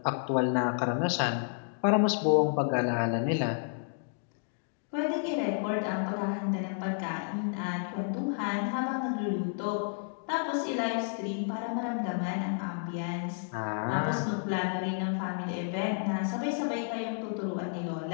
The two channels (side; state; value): right; silent; digital silence